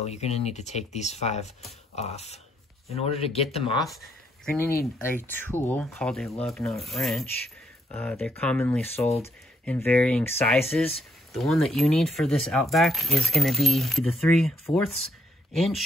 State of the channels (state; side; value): normal; both; correlation 0.72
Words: you're going to need to take these 5 off. In order to get them off, you're going to need a tool called a lug nut wrench. They're commonly sold in varying sizes. The one that you need for this Outback is going to be the 3/4